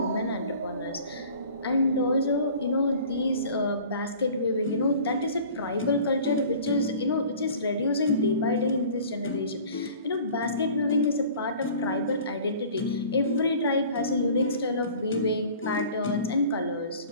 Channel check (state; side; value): inverted; both; correlation -0.45